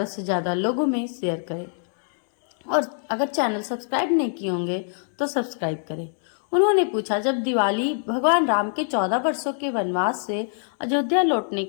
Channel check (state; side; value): silent; right; 62 dB below the other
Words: से ज़्यादा लोगों में शेयर करें। और अगर चैनल सब्सक्राइब नहीं किए होंगे तो सब्सक्राइब करें। उन्होंने पूछा, जब दिवाली भगवान राम के 14 वर्षों के वनवास से अयोध्या लौटने